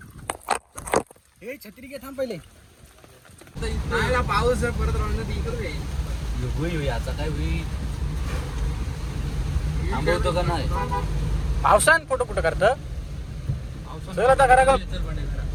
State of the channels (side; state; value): both; identical; correlation 1.00